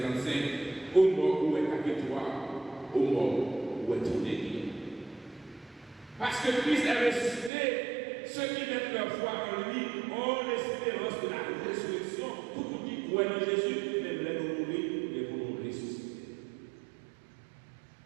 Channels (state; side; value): drops out; left; at 7.5 s